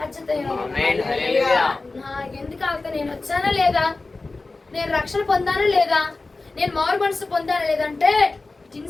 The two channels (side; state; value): right; quieter; 3.5 dB